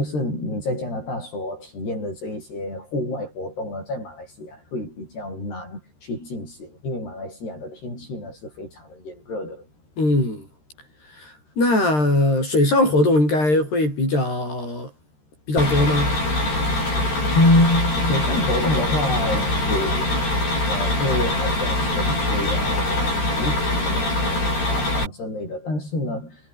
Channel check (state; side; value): late; right; 13 ms